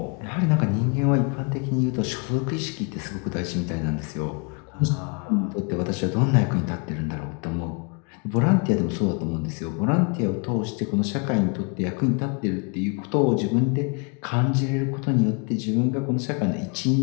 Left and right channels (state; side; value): quieter; right; 35.5 dB